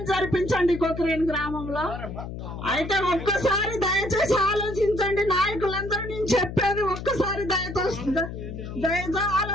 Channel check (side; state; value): left; noise; hum, 8 dB below the sound